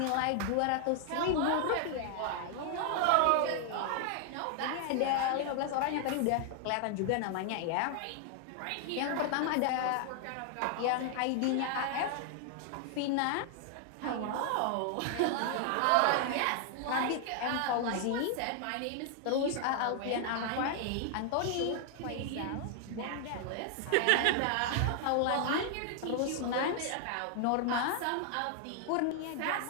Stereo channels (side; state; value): both; different; correlation 0.00